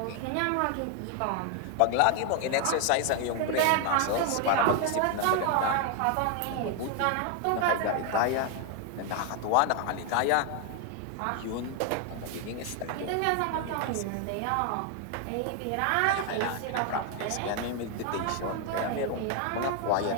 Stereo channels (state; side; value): different; both; correlation 0.00